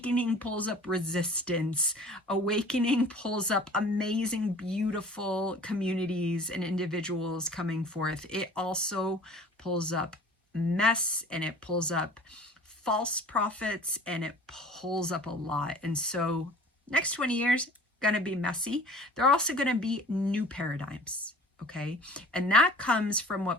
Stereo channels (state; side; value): normal; both; correlation 0.45